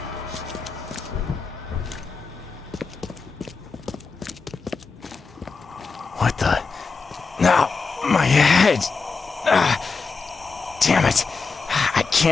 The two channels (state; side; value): quieter; right; 4.6 dB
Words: What the? No, my head. Damn it. I